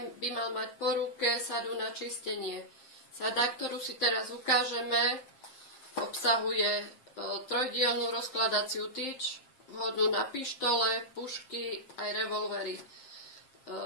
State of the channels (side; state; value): right; late; 7.4 ms